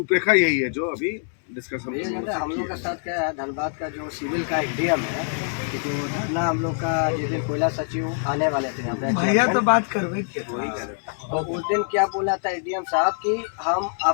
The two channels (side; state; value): right; silent; 62 dB below the other